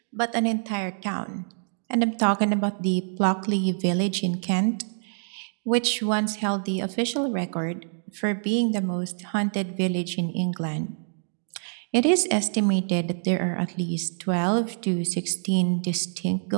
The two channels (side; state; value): left; silent; digital silence